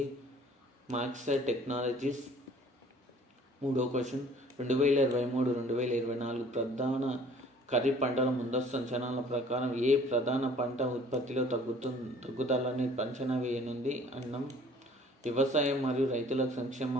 మాక్సర్ టెక్నాలజీస్. మూడో క్వశ్చన్, 2023-2024 ప్రధాన ఖరీఫ్ పంటల ముందస్తు అంచనాల ప్రకారం ఏ ప్రధాన పంట ఉత్పత్తిలో తగ్గుదలని అంచనా వేయనుంది? అన్నం. వ్యవసాయం మరియు రైతుల సంక్షేమ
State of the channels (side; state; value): both; normal; correlation 0.53